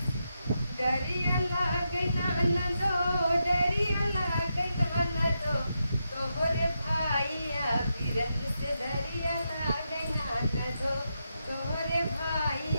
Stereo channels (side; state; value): both; inverted; correlation -0.85